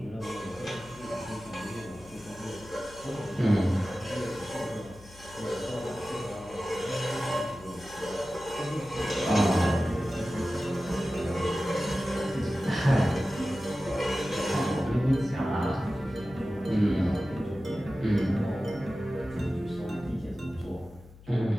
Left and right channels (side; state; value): left; noise; hum, 21 dB below the sound